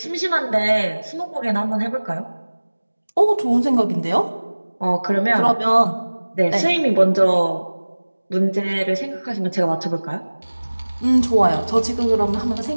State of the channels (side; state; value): both; inverted; correlation -1.00